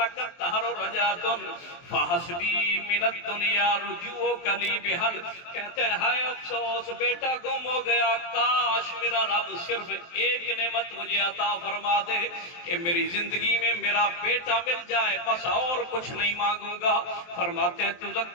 تہر رجعۃ فحسبی من الدنیا رجوع کلی بحل, کہتے ہیں ہائے افسوس بیٹا گم ہو گیا, کاش میرا رب صرف ایک نعمت مجھے عطا فرما دے کہ میری زندگی میں میرا بیٹا مل جائے, بس اور کچھ نہیں مانگوں گا. فرماتے ہیں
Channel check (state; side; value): late; right; 23 ms